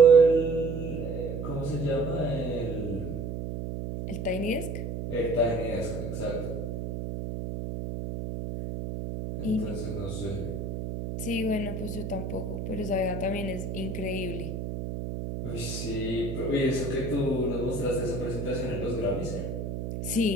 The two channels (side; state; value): right; noise; hum, 5 dB below the sound